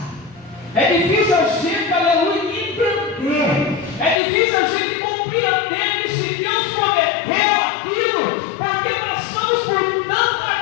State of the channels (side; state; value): right; drops out; at 4.2 s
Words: é difícil a gente, aleluia, entender, é difícil a gente compreender que se Deus prometeu aquilo, porque passamos por